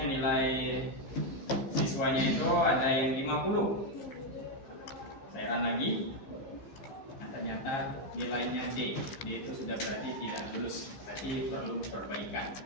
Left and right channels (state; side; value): late; right; 14 ms